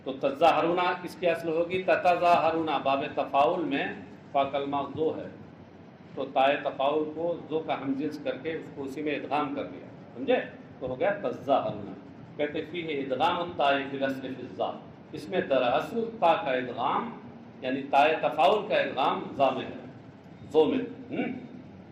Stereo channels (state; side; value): identical; both; correlation 1.00